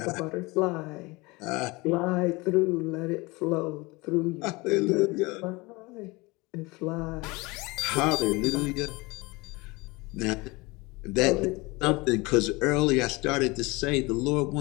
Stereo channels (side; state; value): right; quieter; 24.2 dB